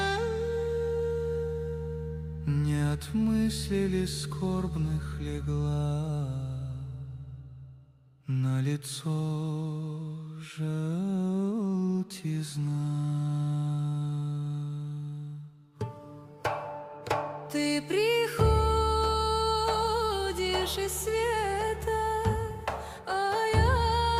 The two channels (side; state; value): both; identical; correlation 1.00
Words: Не от мыслей скорбных легла на лицо желтизна. Ты приходишь из света, а